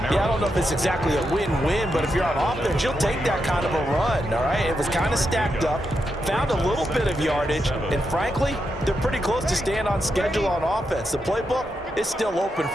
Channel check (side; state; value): both; normal; correlation 0.84